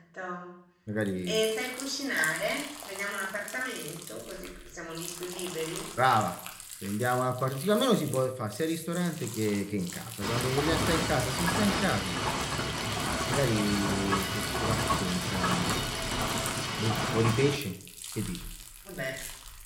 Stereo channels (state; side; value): identical; both; correlation 1.00